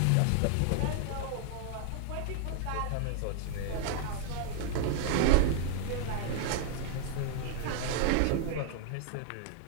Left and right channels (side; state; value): both; different; correlation 0.00